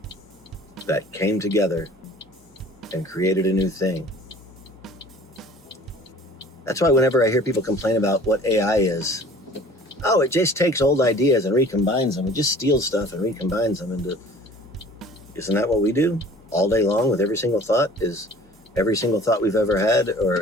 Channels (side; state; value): both; normal; correlation 0.48